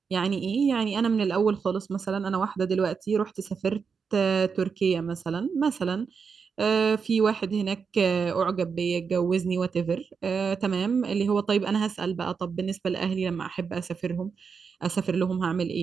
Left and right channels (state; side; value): quieter; left; 5.8 dB